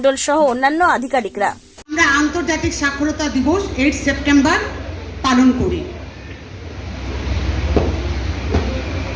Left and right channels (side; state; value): both; identical; correlation 1.00